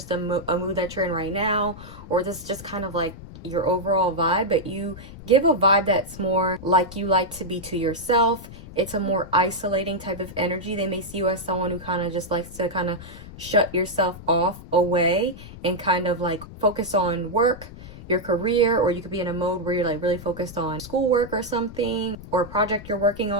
a mood that you're in right now, or this is just kind of like your overall vibe, but you give a vibe that's more like you like to be to yourself. It's a more isolating type of energy. They may see you as someone who kind of just likes to kind of shut yourself off away and kind of like focus on work, your career, or you could be in a mode where you're like really focused on schoolwork or something, or a project you're working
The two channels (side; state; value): left; noise; rumble, 15 dB below the sound